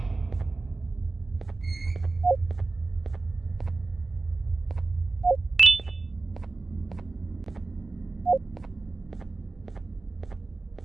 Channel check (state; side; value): quieter; left; 3.4 dB